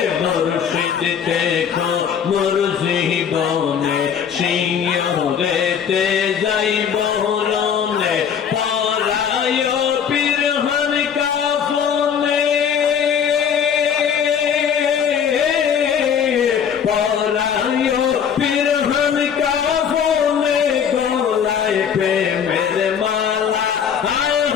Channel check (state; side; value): quieter; right; 7.7 dB